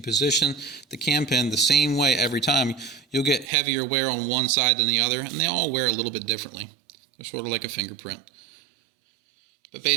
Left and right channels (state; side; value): drops out; left; at 3.5 s